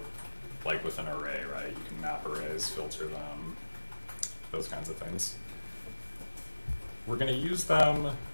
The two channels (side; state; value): both; inverted; correlation -1.00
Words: like with an array, right? You can map arrays, filter them, those kinds of things. We're going to use them